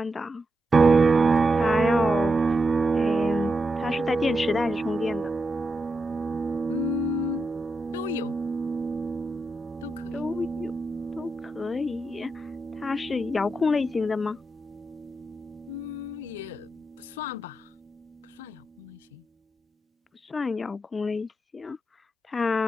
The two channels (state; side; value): normal; both; correlation 0.86